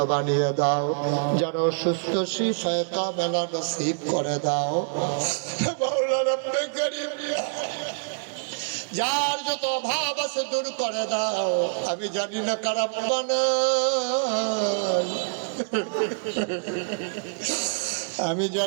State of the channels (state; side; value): silent; left; 61 dB below the other